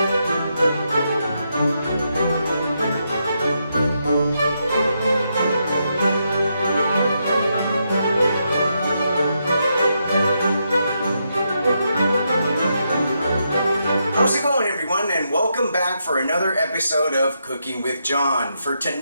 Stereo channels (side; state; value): both; inverted; correlation -0.81